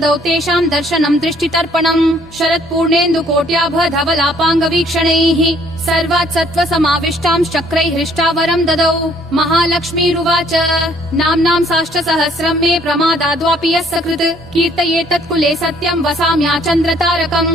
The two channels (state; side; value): normal; both; correlation 0.62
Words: तेषां दर्शनं दृष्टितर्पणम् शरत्पूर्णेन्दुकोट्याभ धवलापाङ्गवीक्षणैः सर्वात् सत्त्व समाविष्टां चक्रैः हृष्टावरं ददौ महालक्ष्मीरुवाच नाम्नां साष्टसहस्रं मे प्रमादाद्वापि यः सकृत् कीर्तयेतत्कुले सत्यं